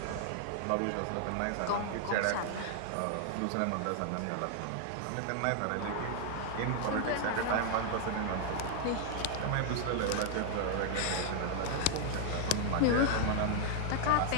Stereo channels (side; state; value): both; different; correlation 0.00